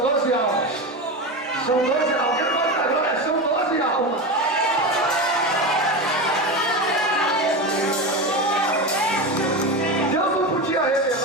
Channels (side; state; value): both; normal; correlation 0.21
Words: almas. São 12 almas. Quem pode dar glória? São 12 almas. Deus não podia